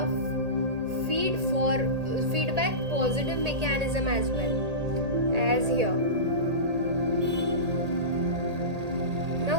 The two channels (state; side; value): late; left; 1.8 ms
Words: feedback positive mechanism as well as here. Now